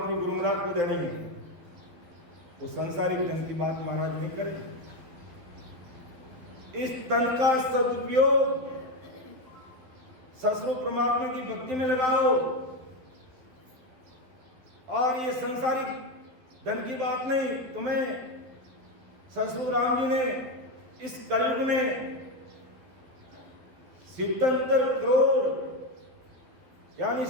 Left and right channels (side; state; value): left; late; 12 ms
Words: गुरु महाराज को देनी है। वो संसारिक धन की बात महाराज नहीं करें। इस तन का सदुपयोग ससुर परमात्मा की भक्ति में लगाओ। और ये संसारिक धन की बात नहीं, तुम्हें ससुर राम जी ने इस कलयुग में 77 करोड़ यानी